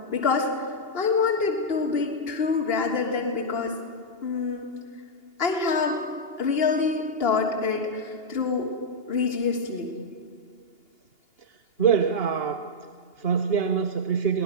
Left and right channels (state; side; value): late; right; 2.8 ms